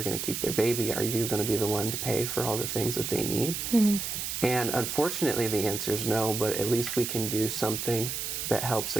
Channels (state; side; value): noise; right; hiss, 3 dB below the sound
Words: going to keep their baby? Are you going to be the one to pay for all the things that they need? And unfortunately the answer is no, but at least we can do something that helps,